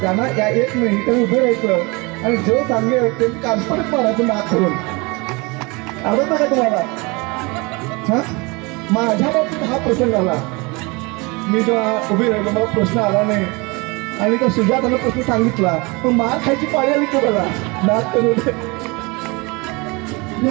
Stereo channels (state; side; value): quieter; left; 26.9 dB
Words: या येत नाही त्यांनी उभे राहायचं आणि जो सांगेल त्यांनी कानपडत मारायचं नाक करून. आवडतं का तुम्हाला? हा, माझ्या बाबतीत हा प्रसंग आला. मी जेव्हा उभी राहिलो मला प्रश्न आला नाही आणि त्या सुजातानं प्रश्न सांगितला पण मार खायची पाळी आली की बघा नाक करून. मी